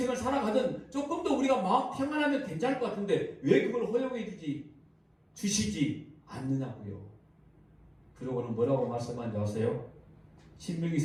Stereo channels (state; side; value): identical; both; correlation 1.00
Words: 살아가든 조금 더 우리가 마음 평안하면 괜찮을 것 같은데 왜 그걸 허용해 주시지 않느냐고요. 그러고는 뭐라고 말씀하는지 아세요?